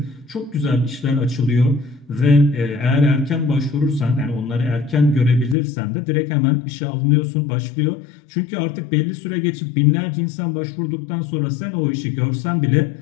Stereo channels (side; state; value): right; drops out; at 5.6 s